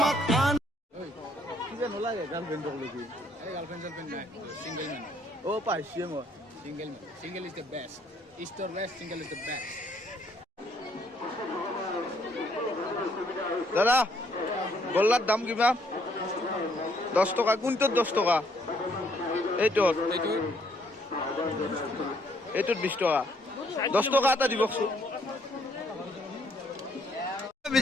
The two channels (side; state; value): both; normal; correlation 0.68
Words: কিবা নলাগে গাৰ্লফ্ৰেণ্ডক লাগি। এই গাৰ্লফ্ৰেণ্ড চাৰ্লফ্ৰেণ্ড নাই, ছিংগল মেন, পাইছোৱে মই। Single man, single is the best, east or west, single is the best. দাদা গল্লাৰ দাম কিমান? 10 টকা। কোনটোত 10 টকা? এইটোত এইটোত 20 টকা। 10 টকা এটা দিবচোন।